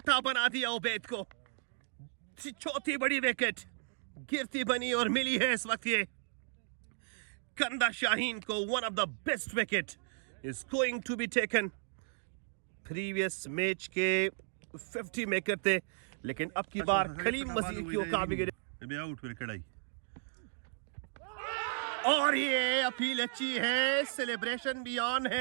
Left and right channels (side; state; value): left; silent; digital silence